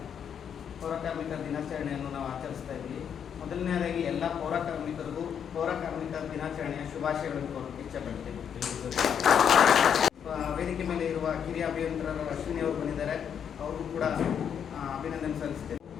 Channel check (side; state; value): right; quieter; 8.1 dB